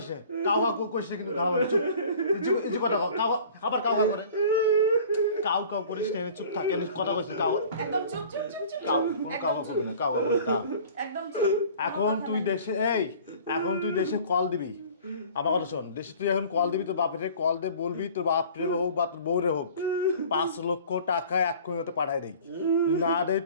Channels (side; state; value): both; inverted; correlation -0.46